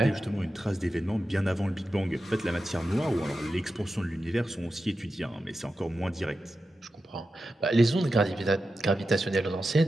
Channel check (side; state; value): both; normal; correlation 0.91